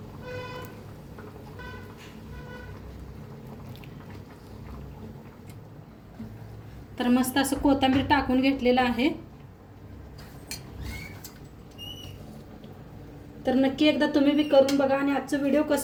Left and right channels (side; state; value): both; identical; correlation 1.00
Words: तर मस्त असं कोथिंबीर टाकून घेतलेलं आहे. तर नक्की एकदा तुम्ही बी करून बघा आणि आजचं व्हिडिओ